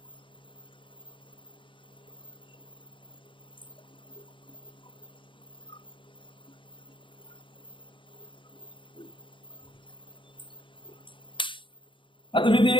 आता मी ते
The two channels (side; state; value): right; late; 0.24 ms